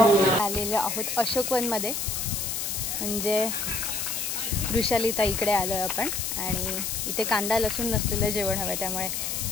आलेलो आहोत अशोकवनमध्ये, म्हणजे वृषाली ताईकडे आलो आहे आपण. आणि इथे कांदा लसूण नसलेलं जेवण हवं, त्यामुळे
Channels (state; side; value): noise; left; hiss, 2 dB below the sound